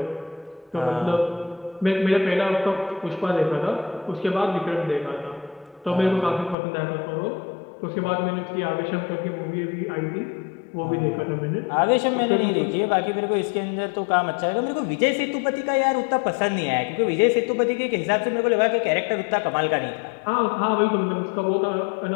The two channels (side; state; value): right; drops out; at 6.6 s